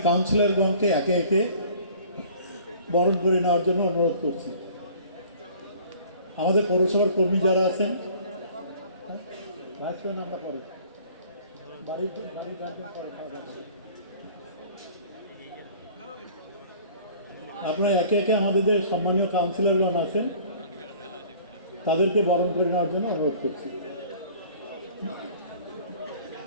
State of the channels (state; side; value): inverted; both; correlation -0.50